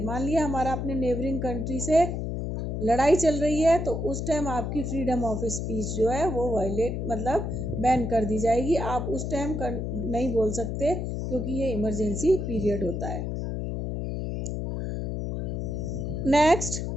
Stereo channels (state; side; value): noise; left; hum, 3 dB below the sound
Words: मान लिया हमारा अपने नेबरिंग कंट्री से लड़ाई चल रही है, तो उस टाइम आपकी फ्रीडम ऑफ स्पीच जो है वो वायलेट मतलब बैन कर दी जाएगी। आप उस टाइम नहीं बोल सकते क्योंकि ये इमरजेंसी पीरियड होता है। Next,